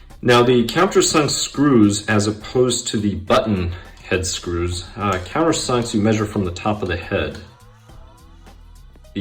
Now the countersunk screws, as opposed to the button head screws, countersunks you measure from the top of the head.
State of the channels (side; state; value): both; identical; correlation 1.00